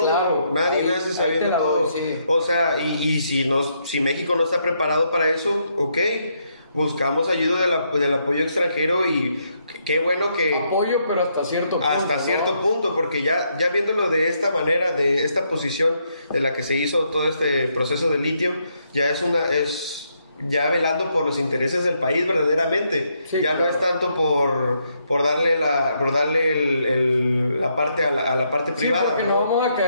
Claro, nace sabiendo todo. Sí. O sea, y si México no está preparado para eso, ok. Buscamos ayuda del apoyo extranjero y qué bueno que... Apoyo, pero hasta cierto punto. Hasta cierto punto, porque ya viéndolo de esta manera, de esta posición de la que se hizo todo este proceso de litio, ya es velando por los intereses del país verdaderamente. Sí, ya claro. No es tanto por darle la parte a la parte privada. Porque no vamos a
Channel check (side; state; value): both; inverted; correlation -0.76